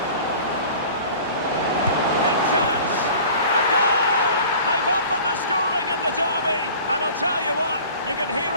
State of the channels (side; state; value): both; inverted; correlation -0.44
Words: chance! A goal! They've opened the scoring in the derby, and I'll tell you what, you can hear